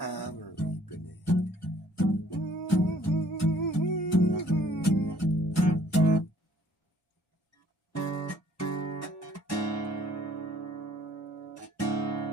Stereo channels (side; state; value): both; normal; correlation 0.59